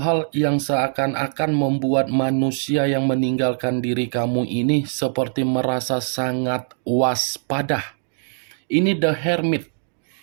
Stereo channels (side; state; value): left; silent; digital silence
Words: hal yang seakan-akan membuat manusia yang meninggalkan diri kamu ini seperti merasa sangat waspada. Ini The Hermit.